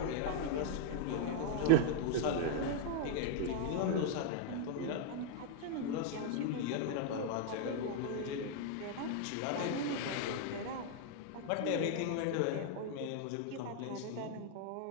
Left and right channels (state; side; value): different; both; correlation 0.00